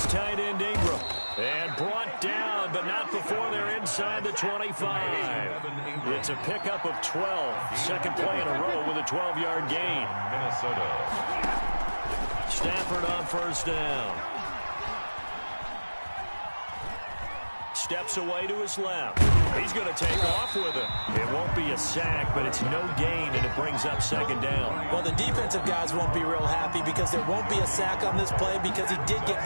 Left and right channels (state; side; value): inverted; both; correlation -1.00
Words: tight end Ingram. And brought down, but not before they're inside the 25. It's a pickup of 12. Second play in a row with a 12-yard gain. Minnesota. Stafford on 1st down. Steps away to his left. He's going to take off with it. It won't be a sack, but it's no gain, and it brings up 2nd down. Well, the defensive guys won't be real happy because there won't be a sack on this play because he did get